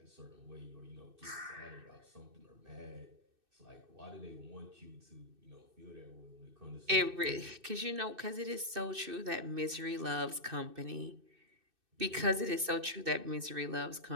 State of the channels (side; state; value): left; late; 2.6 ms